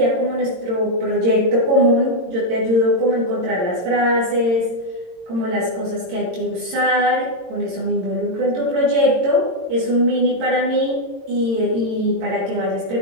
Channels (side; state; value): left; late; 22 ms